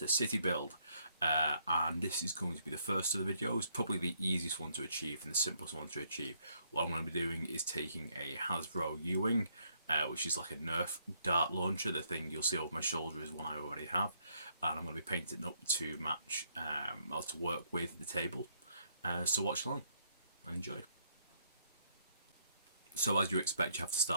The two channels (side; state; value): both; inverted; correlation -0.72